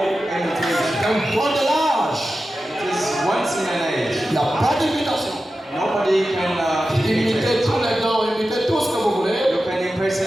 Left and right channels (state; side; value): normal; both; correlation 0.93